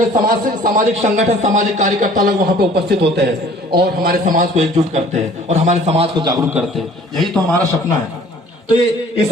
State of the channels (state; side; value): normal; both; correlation 0.52